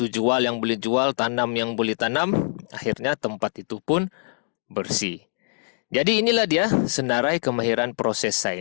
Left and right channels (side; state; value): right; silent; 63 dB below the other